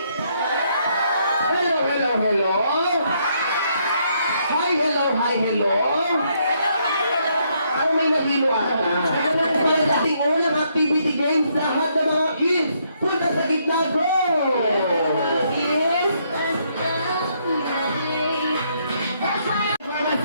Hello, hello, hello! Hi, hello, hi, hello! Ano may nahilo ata? Para sa ating unang activity games, lahat ng mga kids, punta sa gitna, go! Kids! Mama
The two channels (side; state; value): both; inverted; correlation -0.73